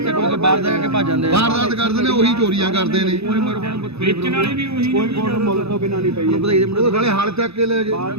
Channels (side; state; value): left; late; 0.79 ms